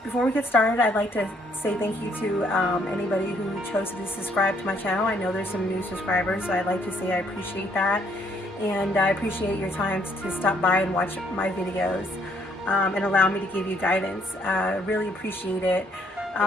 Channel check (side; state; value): both; normal; correlation 0.68